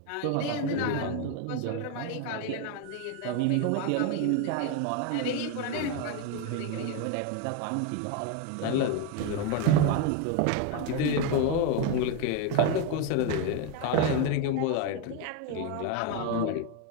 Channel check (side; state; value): both; different; correlation 0.02